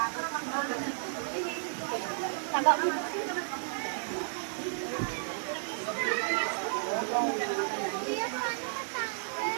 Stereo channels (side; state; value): left; silent; digital silence